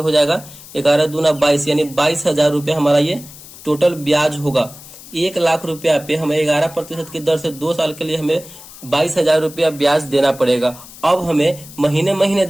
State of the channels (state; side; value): noise; left; hiss, 18 dB below the sound